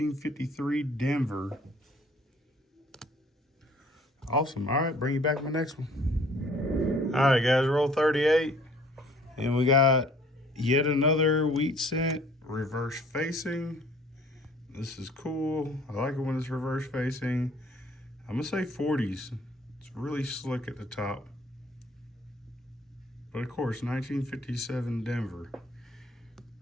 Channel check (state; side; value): normal; both; correlation 0.55